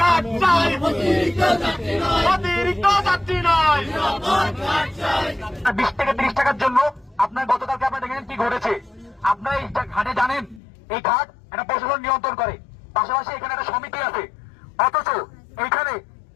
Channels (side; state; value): right; drops out; at 10.6 s